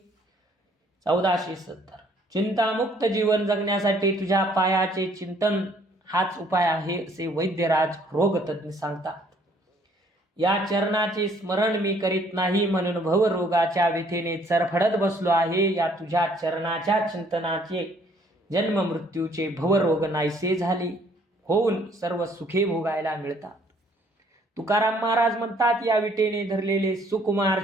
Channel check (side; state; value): both; normal; correlation 0.62